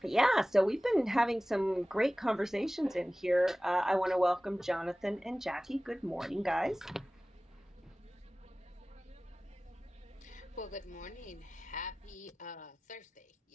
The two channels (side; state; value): both; normal; correlation 0.97